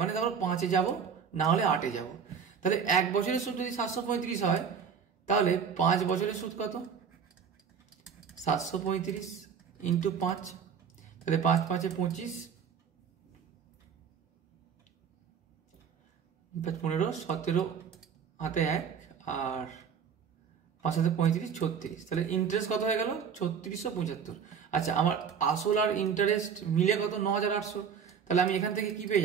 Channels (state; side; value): quieter; left; 7.0 dB